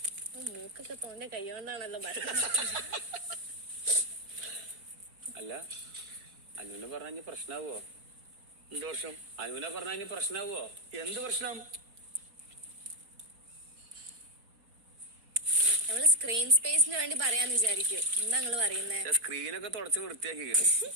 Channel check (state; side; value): late; left; 4.0 ms